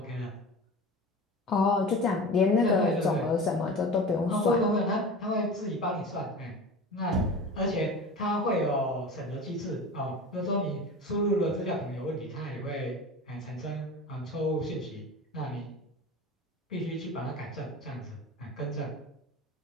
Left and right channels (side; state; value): both; normal; correlation 0.34